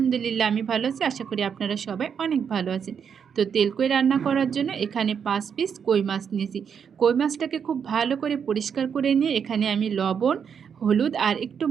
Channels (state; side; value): quieter; left; 7.2 dB